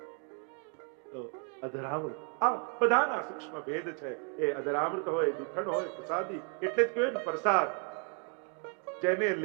અધરામૃત આ બધાના સૂક્ષ્મ ભેદ છે. એ અધરામૃત હોય, જૂઠણ હોય, પ્રસાદી એટલે જ કહેવાય ને પ્રસાદ. જેને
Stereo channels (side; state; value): left; quieter; 39.5 dB